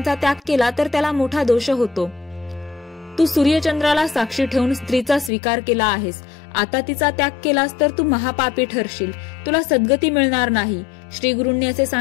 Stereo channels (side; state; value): right; drops out; at 5.3 s